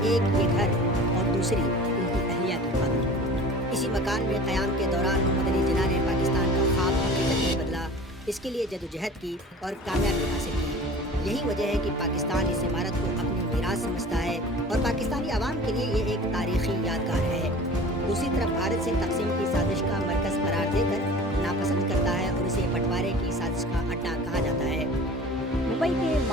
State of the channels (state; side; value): normal; both; correlation 0.41